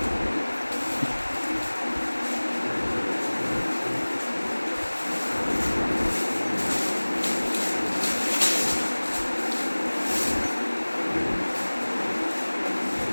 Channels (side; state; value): both; inverted; correlation -1.00